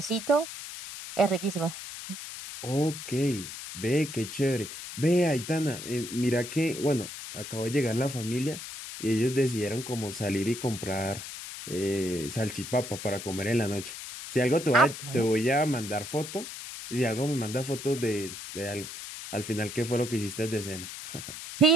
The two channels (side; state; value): left; noise; hiss, 10 dB below the sound